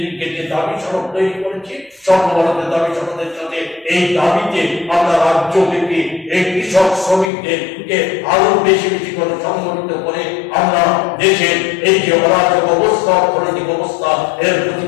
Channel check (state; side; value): drops out; right; at 7.3 s